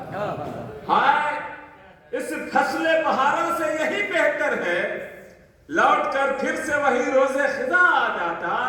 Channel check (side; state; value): both; identical; correlation 1.00